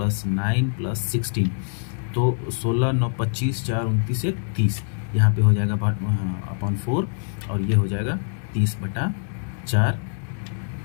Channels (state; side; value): silent; right; digital silence